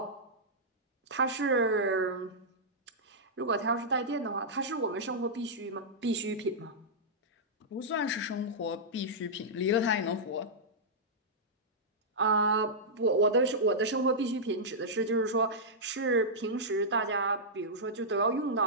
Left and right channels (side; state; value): both; normal; correlation -0.11